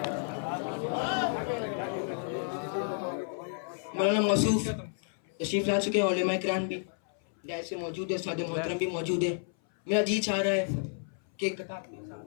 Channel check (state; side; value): silent; right; 57 dB below the other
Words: مولانا موصوف تشریف لا چکے ہیں, علماء کرام بھی جائز سے موجود ہے, سادہ محترم بھی موجود ہے. میرا جی چاہ رہا ہے کہ ایک کتاب